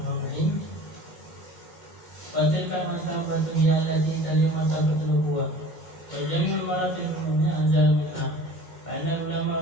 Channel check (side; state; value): right; late; 2.1 ms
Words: Wa tilka martabatu hiya allati taliya martabatul nubuwah. Wa jami'ul maratil umumiyya anzal minha. Fa inna ulama